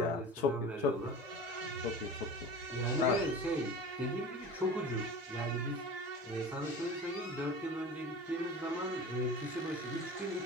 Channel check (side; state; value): both; normal; correlation 0.35